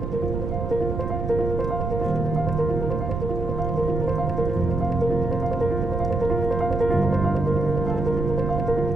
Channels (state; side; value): noise; right; rumble, 3 dB below the sound